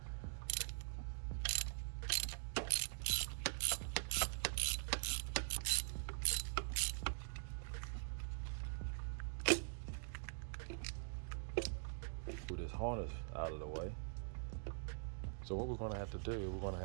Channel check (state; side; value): silent; left; digital silence